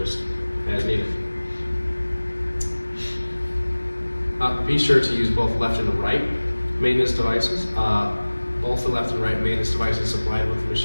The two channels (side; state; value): both; inverted; correlation -1.00